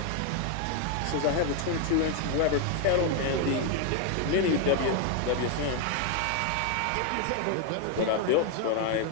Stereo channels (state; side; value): different; both; correlation 0.01